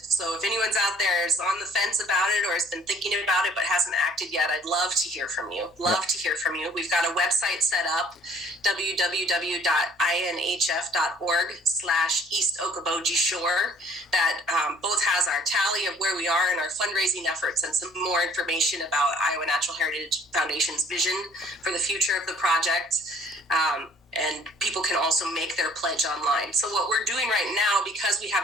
anyone's out there is on the fence about it or has been thinking about it but hasn't acted yet, I'd love to hear from you. To hear from you. We've got a website set up, www.inhf.org/East Okoboji Shore, that both has our tally of where we are in our fundraising efforts and some more information about Iowa Natural Heritage Foundation's vision for the future of the project. And people can also make their pledge online. So what we're doing right now, because we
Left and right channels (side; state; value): both; normal; correlation 0.56